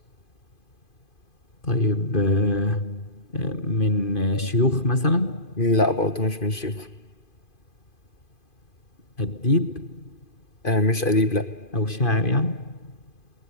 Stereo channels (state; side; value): late; right; 2.5 ms